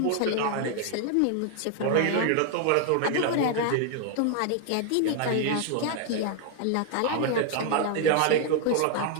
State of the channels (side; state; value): both; different; correlation 0.00